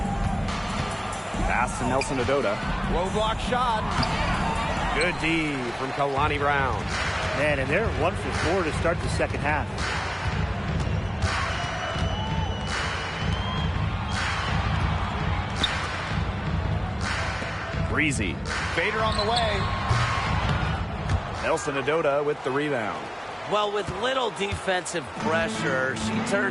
Pass to Nelson Adota. Low block shot. Good D from Kalani Brown. Man, and they're 1 for 4 to start the second half. Breezy. Fader on the way. Nelson Adota with the rebound. Well, with little defensive pressure, she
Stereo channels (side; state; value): both; identical; correlation 1.00